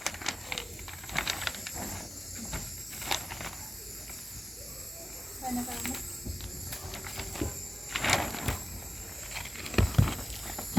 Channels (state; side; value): normal; both; correlation 0.97